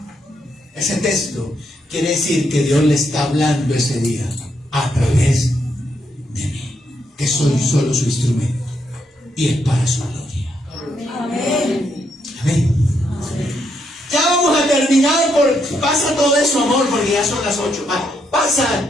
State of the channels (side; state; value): both; normal; correlation 0.77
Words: ese texto quiere decir que Dios le está hablando ese día a través de mí, que soy solo su instrumento y es para su gloria. Amén. Amén. Ya vamos a terminar. Pasa todo eso, amor, porque ya son las 8. Pasa